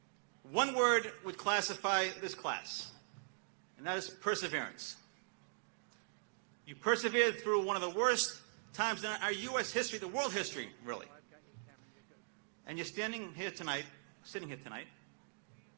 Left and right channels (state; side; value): silent; left; digital silence